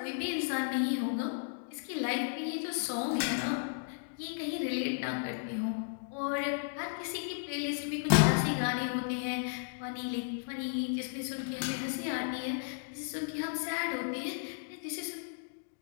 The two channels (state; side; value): silent; right; digital silence